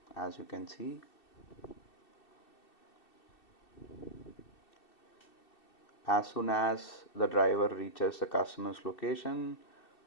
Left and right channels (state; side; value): late; right; 2.7 ms